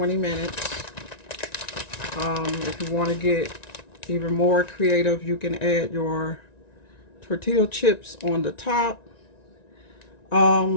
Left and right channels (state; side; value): late; right; 1.9 ms